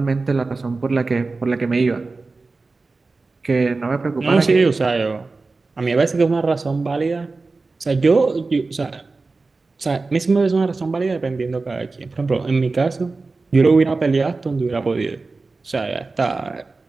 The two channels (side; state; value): left; quieter; 3.8 dB